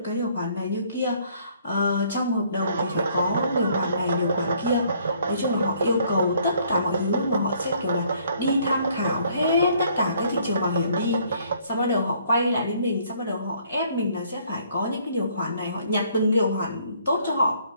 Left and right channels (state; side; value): inverted; both; correlation -0.63